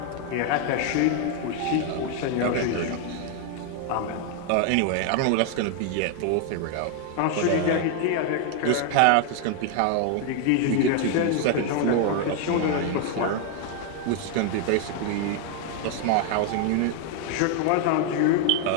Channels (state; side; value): different; both; correlation 0.01